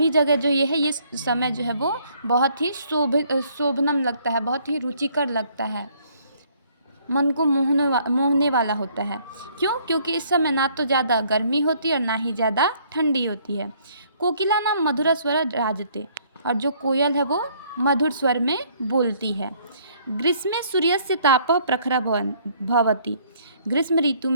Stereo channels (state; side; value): inverted; both; correlation -0.63